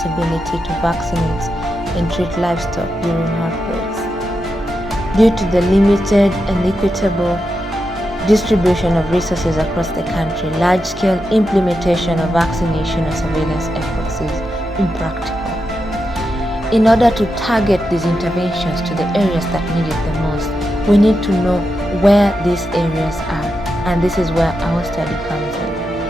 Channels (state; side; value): normal; both; correlation 0.87